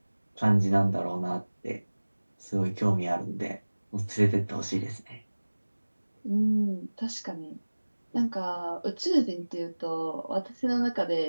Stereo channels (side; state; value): both; inverted; correlation -1.00